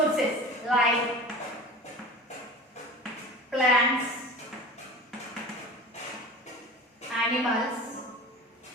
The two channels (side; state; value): both; normal; correlation 0.36